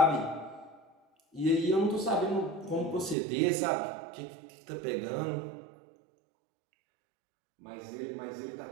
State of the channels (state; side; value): drops out; left; at 3.2 s